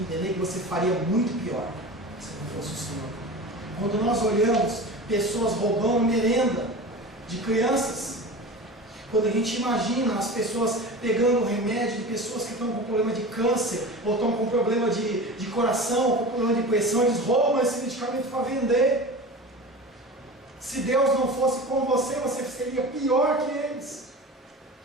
que você faria muito pior se não fosse o Senhor. Quando nós olhamos pessoas roubando merenda de crianças, quando a gente imagina as pessoas pegando remédio de pessoas que estão com problema de câncer, ou estão com problema de coração, ou com problema de pressão, eles roubam esse medicamento para vender. Se Deus não fosse com você, você seria pior que eles.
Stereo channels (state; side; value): normal; both; correlation 0.33